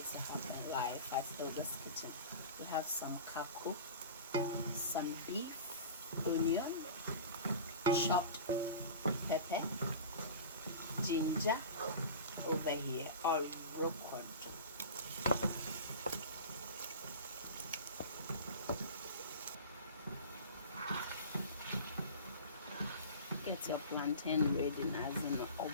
to happen live at Hilda's Kitchen. We have some kako, some beef, onion, chopped pepper, ginger over here, or roquefort. Get your plantain ready as in a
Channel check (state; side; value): inverted; both; correlation -0.34